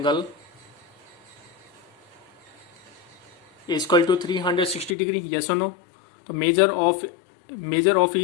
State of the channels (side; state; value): right; drops out; at 5.0 s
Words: is equal to 360 degree. Yes or no? तो measure of